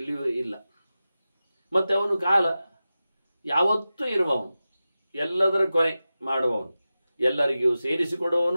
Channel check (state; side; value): inverted; both; correlation -0.94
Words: ಇಲ್ಲ. ಮತ್ತು ಅವನು ಕಾಲ ಯಾವತ್ತೂ ಇರುವವನು, ಎಲ್ಲದರ ಕೊನೆ ಮಾಡುವವನು, ಎಲ್ಲರಿಗೂ